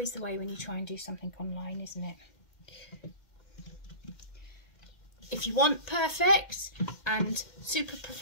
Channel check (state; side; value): late; right; 2.1 ms